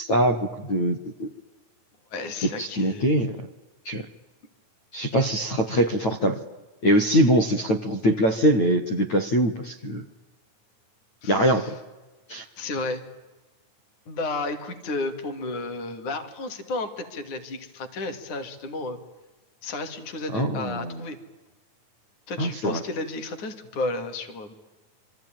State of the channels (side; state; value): right; late; 9.2 ms